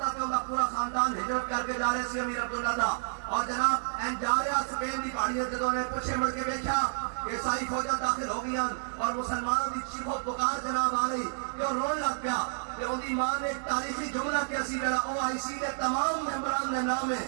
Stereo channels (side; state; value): left; silent; digital silence